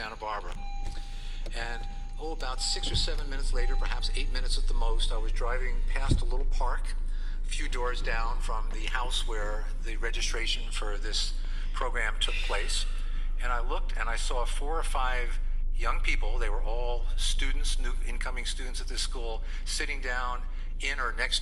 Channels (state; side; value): identical; both; correlation 1.00